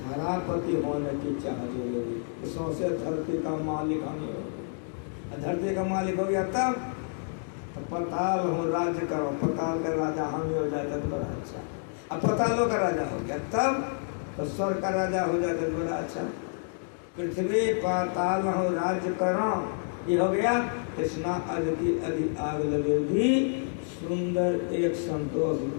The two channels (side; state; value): right; silent; digital silence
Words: होने की चाह जरूरी। सौंसे धरती का मालिक हम ही हो। धरती का मालिक हो गया तब तो पताल हो राज्य करो, पताल का राजा हम ही हो जाता तो बड़ा अच्छा। अब पतालों का राजा हो गया तब तो स्वर्ग का राजा हो जाता तो बड़ा अच्छा। पृथ्वी पाताल हो राज्य करो, ये हो गया। कृष्णा अदि अधि आग लगेगी। सुंदर एक संतोष